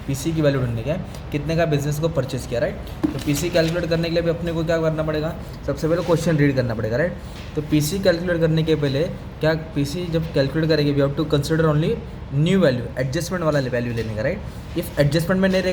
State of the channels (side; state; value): both; identical; correlation 1.00